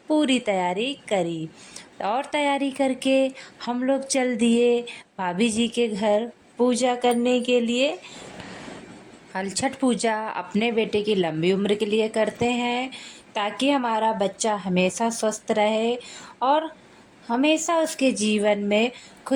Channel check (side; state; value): both; identical; correlation 1.00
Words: पूरी तैयारी करी और तैयारी करके हम लोग चल दिए भाभी जी के घर पूजा करने के लिए। हल छठ पूजा अपने बेटे की लंबी उम्र के लिए करते हैं, ताकि हमारा बच्चा हमेशा स्वस्थ रहे और हमेशा उसके जीवन में